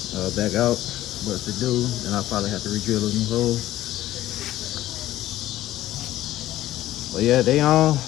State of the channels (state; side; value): quieter; right; 14.5 dB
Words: back out. But if they do, then I'll probably have to re-drill a new hole. But yeah, they on.